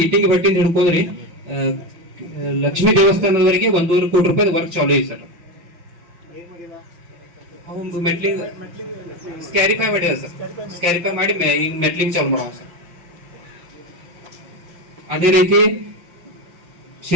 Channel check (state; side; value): late; left; 5.8 ms